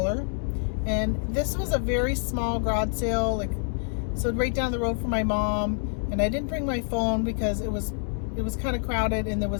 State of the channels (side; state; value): right; silent; 60 dB below the other